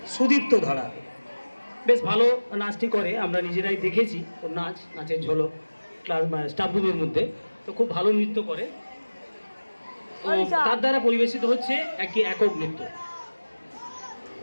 সুদীপ্ত ধারা। বেশ ভালো নাচটি করে, আমরা নিজেরাই দেখেছি ওর নাচের ঝলক ক্লাস স্টাফ রুমের মধ্যে। তো খুব ভালো নৃত্য করে। তো তার দ্বারা পরিবেশিত হচ্ছে একটি একক নৃত্য,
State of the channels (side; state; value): both; inverted; correlation -1.00